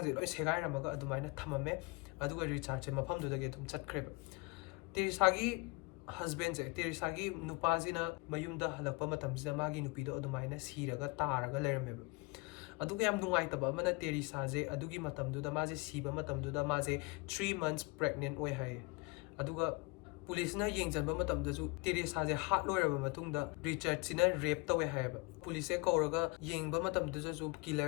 लोय सेगाइरमगा अदुमाइना थममे अदुगा रिचार्ड से मफमदुदगे तुम चटख्रेबा टेरिसागी हस्बैंड से टेरिसागी नुपाजिना मयुमदा हलकपा मतमजिदा मागी नुपीदो अदुमाइना सीरगा तारगा लेरमेबा अदुगा याम नुंगाइतबा अमना टेरिसाजे अदुगी मतमदुदा माजे सीबा मतमदुदा माजे 3 months pregnant ओय हाय अदुगा पुलिसना येंजनबा मतमदजु टेरिसाजे हात लोरबा मतुंगदा रिचार्ड सिना रेप तवे हायबा पुलिसे कौरगा येंगबा मतमदजु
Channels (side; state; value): right; quieter; 26.8 dB